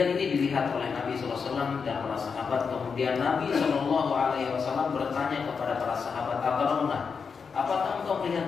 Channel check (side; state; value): right; quieter; 5.7 dB